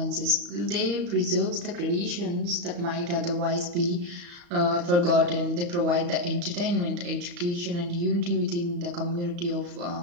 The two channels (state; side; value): late; left; 35 ms